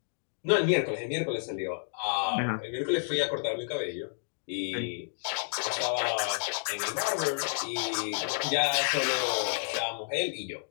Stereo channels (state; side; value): silent; right; digital silence